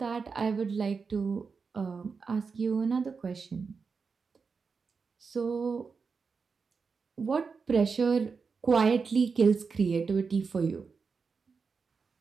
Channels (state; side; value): quieter; left; 5.1 dB